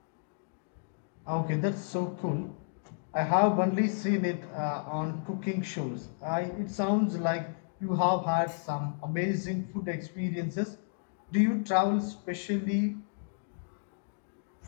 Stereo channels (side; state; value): right; silent; digital silence